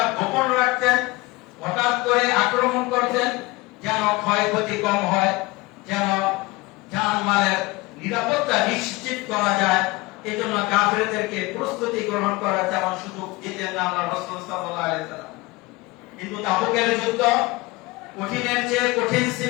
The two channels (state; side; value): quieter; right; 22.3 dB